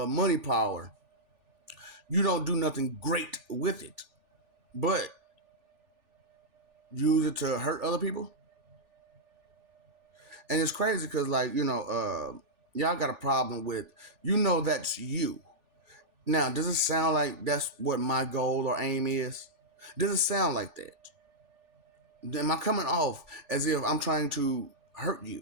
money power, you don't do nothing great with it, but use it to hurt other people. And it's crazy because, like, y'all got a problem with, that's you. Now, does it sound like that's what my goal or aim is? Does it sound like that? Am I coming off as if I'm trying to hurt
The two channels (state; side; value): late; left; 3.4 ms